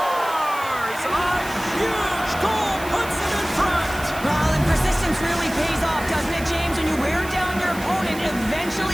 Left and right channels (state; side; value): noise; right; hiss, 15 dB below the sound